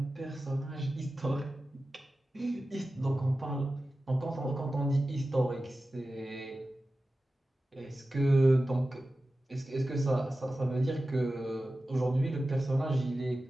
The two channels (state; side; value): normal; both; correlation 0.94